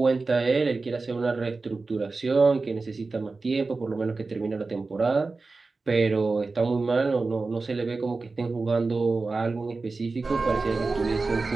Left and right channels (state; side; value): quieter; left; 3.8 dB